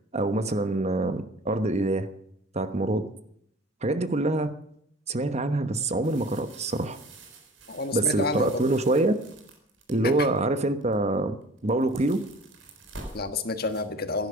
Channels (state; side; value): normal; both; correlation 0.45